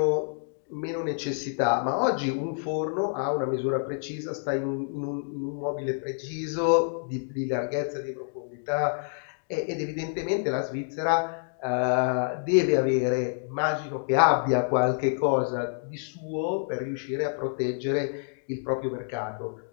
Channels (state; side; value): silent; right; digital silence